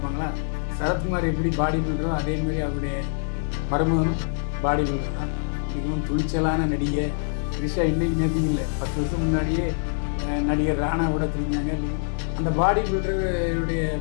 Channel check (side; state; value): right; silent; digital silence